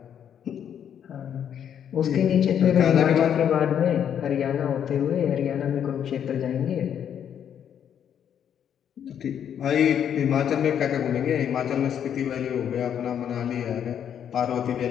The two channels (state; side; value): quieter; right; 9.0 dB